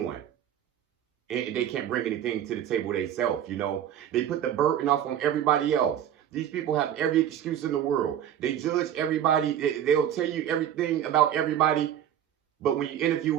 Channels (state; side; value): quieter; left; 10.3 dB